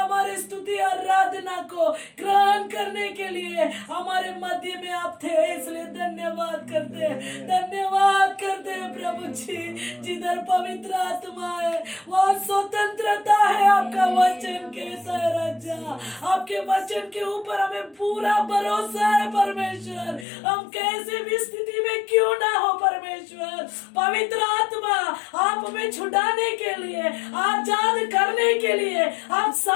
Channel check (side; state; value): right; drops out; at 20.2 s